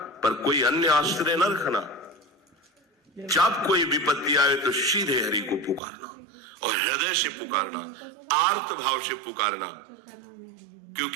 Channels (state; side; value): drops out; left; at 5.8 s